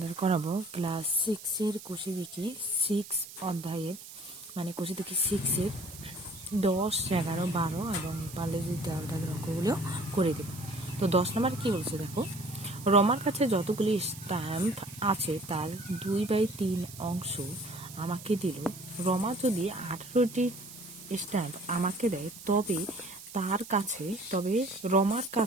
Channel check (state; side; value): noise; right; hiss, 15 dB below the sound